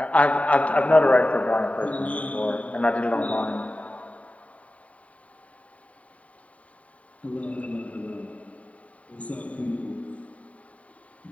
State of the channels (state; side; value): late; right; 0.067 ms